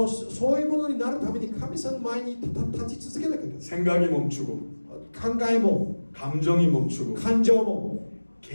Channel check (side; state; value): both; inverted; correlation -1.00